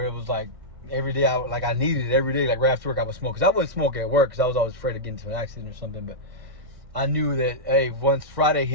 it was like every day I needed it every day. Like right after work, I would smoke. Because I wouldn't smoke at work because I was always afraid of getting into an accident or something. But I knew that, hey, once Friday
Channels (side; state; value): left; late; 1.6 ms